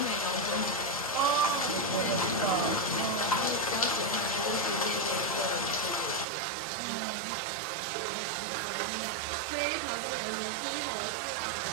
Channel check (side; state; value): left; drops out; at 6.2 s